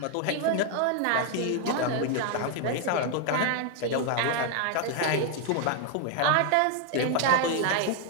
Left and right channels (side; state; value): both; different; correlation 0.00